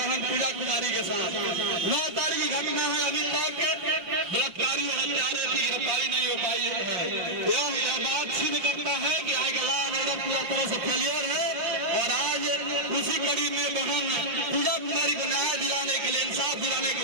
पूजा कुमारी के साथ, 9 तारीख की घटना है, अभी तक बलात्कारी और हत्यारे की गिरफ्तारी नहीं हो पाई है। यह बात सिद्ध करता है कि आज लॉ एंड ऑर्डर पूरा तरह से फेलियर है। और आज उसी कड़ी में बहन पूजा कुमारी को न्याय दिलाने के लिए, इंसाफ दिलाने के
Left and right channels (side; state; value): left; late; 5.6 ms